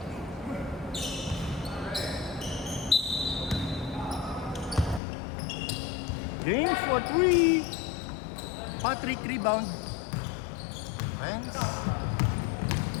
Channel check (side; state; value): right; drops out; at 5.0 s